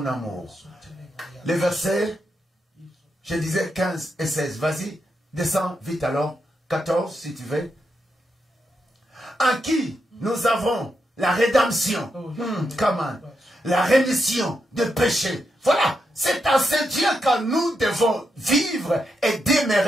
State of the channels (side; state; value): both; normal; correlation 0.84